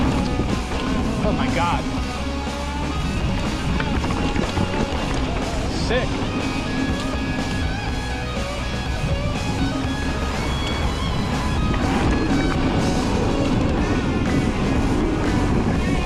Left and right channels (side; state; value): both; identical; correlation 1.00